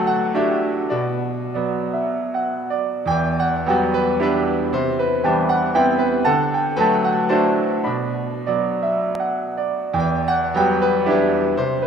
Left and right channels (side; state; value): both; normal; correlation 0.66